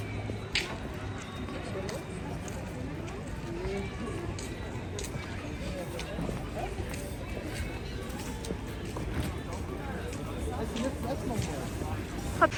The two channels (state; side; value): identical; both; correlation 1.00